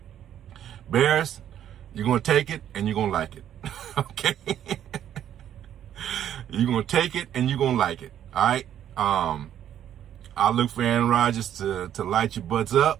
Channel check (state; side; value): quieter; left; 10.5 dB